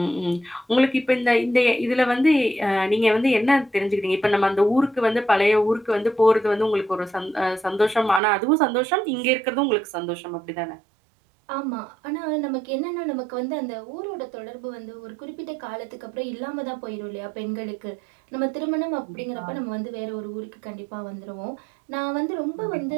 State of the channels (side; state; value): left; drops out; at 8.2 s